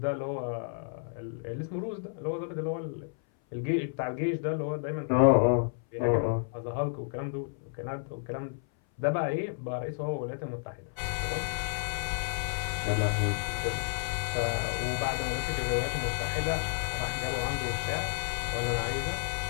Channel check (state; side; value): silent; right; 57 dB below the other